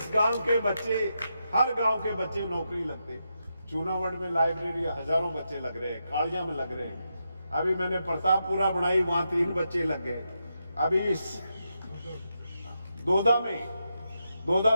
गांव के बच्चे, हर गांव के बच्चे नौकरी लगते। चूनावड़ में लाइब्रेरी हजारों बच्चे लग रहे हैं, कालिया में लग रहे हैं। अभी मैंने प्रतापपुरा बनाई, वहां 3 बच्चे लग गए। अभी इस दोदा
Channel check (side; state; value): both; inverted; correlation -0.85